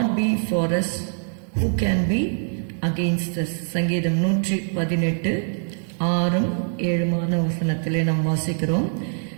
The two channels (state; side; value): silent; left; digital silence